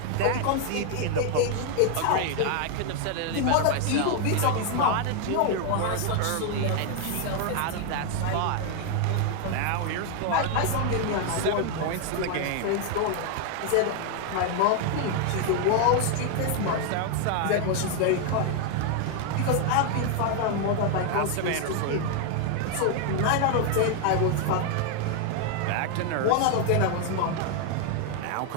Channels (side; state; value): both; different; correlation 0.00